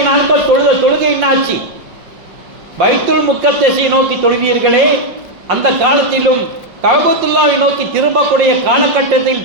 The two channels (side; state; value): left; late; 5.7 ms